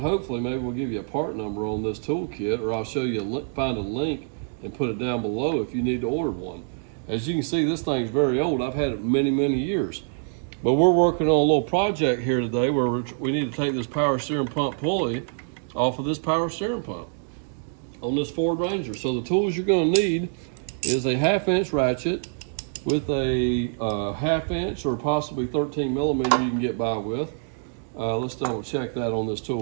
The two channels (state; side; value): silent; left; digital silence